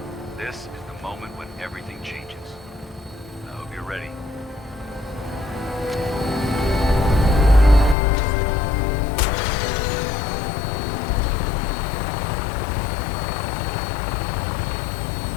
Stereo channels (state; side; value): drops out; right; at 8.0 s